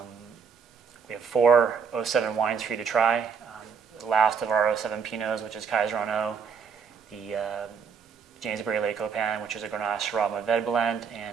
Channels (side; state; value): left; quieter; 6.2 dB